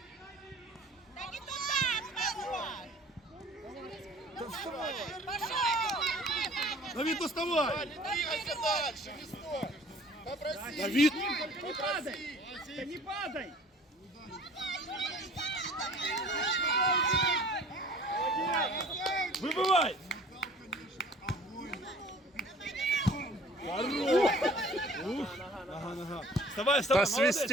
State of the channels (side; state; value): both; normal; correlation 0.50